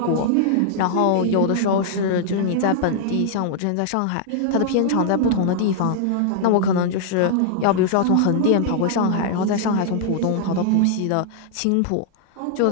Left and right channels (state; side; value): different; both; correlation -0.01